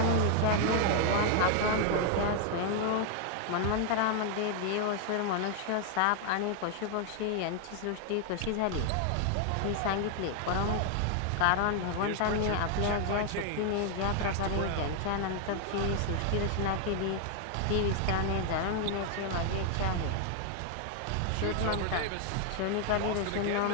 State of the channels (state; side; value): different; both; correlation 0.00